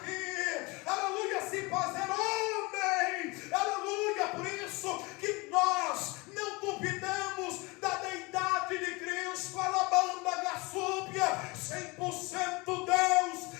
aleluia, se fazer homem, aleluia. Por isso que nós não duvidamos da deidade de Cristo, alabanda gassúbia, 100% Deus,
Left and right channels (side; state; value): right; quieter; 25.4 dB